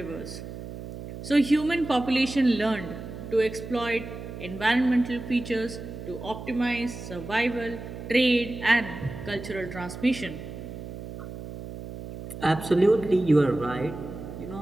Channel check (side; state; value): right; noise; hum, 10 dB below the sound